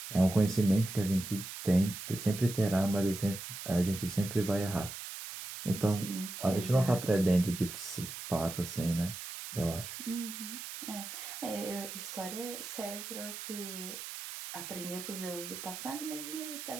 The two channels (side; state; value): right; noise; hiss, 9 dB below the sound